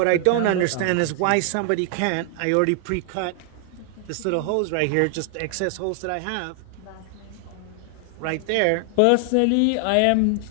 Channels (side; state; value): both; different; correlation 0.00